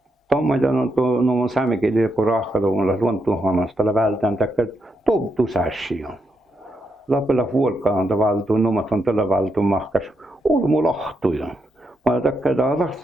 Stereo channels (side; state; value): both; normal; correlation 0.81